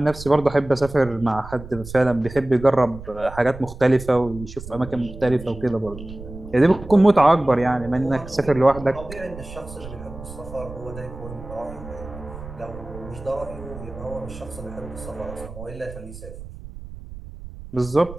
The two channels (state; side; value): noise; right; rumble, 14 dB below the sound